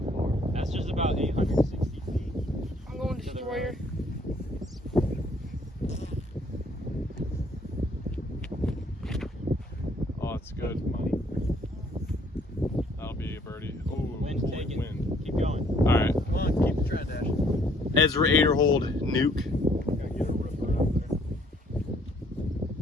far? That's just about 860 feet. I'm going destroyer. Oh, it's good. That'll be a birdie. Oh, Wind's holy taking. wind. Keep going. All right. Come on, keep the trend, Ash. Ezra Aderhold, nuke. Gotta get a ripper out there.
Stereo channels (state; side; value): normal; both; correlation 0.63